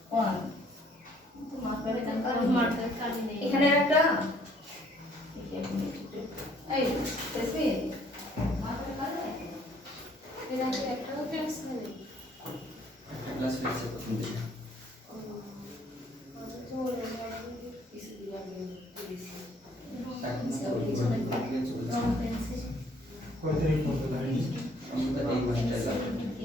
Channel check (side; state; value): both; normal; correlation 0.62